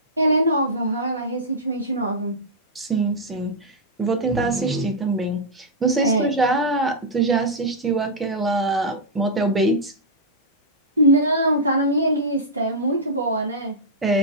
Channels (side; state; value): both; normal; correlation -0.08